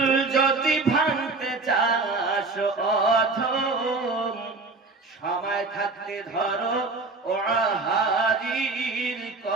যদি ভাঙতে চাস অধম, সময় থাকতে ধরো ওয়াহারির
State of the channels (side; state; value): left; quieter; 3.8 dB